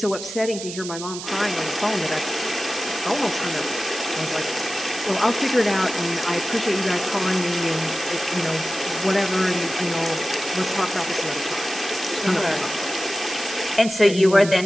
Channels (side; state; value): right; noise; hiss, 9 dB below the sound